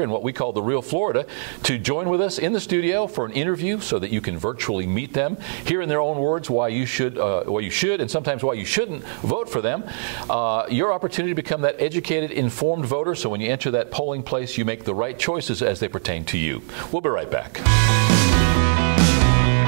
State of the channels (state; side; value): silent; left; 64 dB below the other